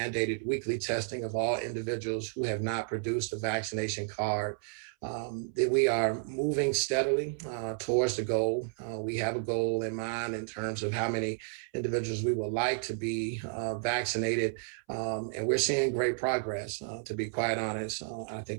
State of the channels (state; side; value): silent; left; 57 dB below the other